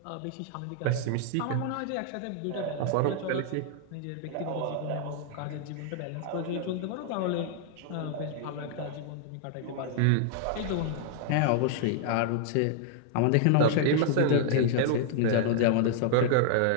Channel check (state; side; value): different; both; correlation -0.01